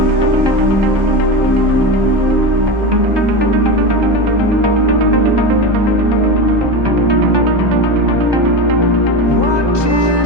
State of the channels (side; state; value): left; late; 1.2 ms